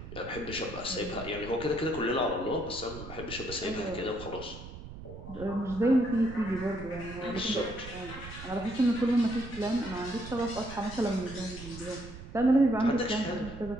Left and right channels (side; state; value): right; noise; rumble, 12 dB below the sound